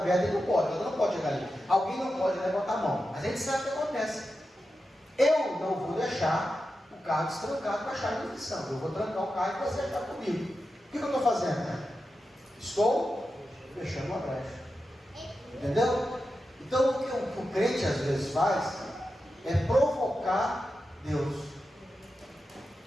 ele não pode chegar ali. Alguém não pode levantar a mão, mas a gente sabe o que acontece. Eu não vou deixar o carro destrancado com a chave de ignição. Eu vou trancar o carro e você achar comigo. O que eu estou fazendo? Estou fechando uma brecha. Entendeu? Então o que o crente às vezes faz é provocar Deus.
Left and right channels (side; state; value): both; normal; correlation 0.90